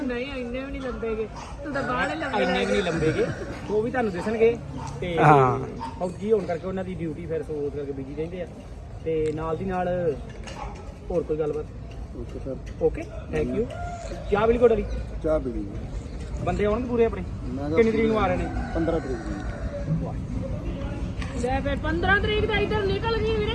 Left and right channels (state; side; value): identical; both; correlation 1.00